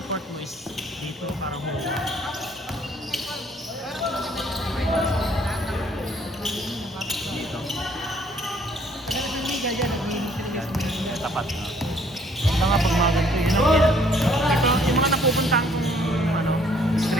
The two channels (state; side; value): normal; both; correlation 0.62